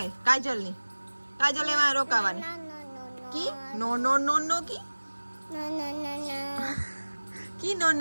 કાજલ ની કાજલ એમાં રોકાવાની કી નો નો નો નો કી કી નો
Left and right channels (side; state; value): both; inverted; correlation -1.00